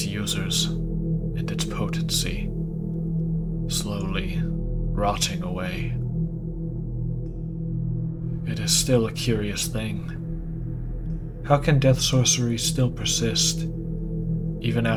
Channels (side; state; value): both; identical; correlation 1.00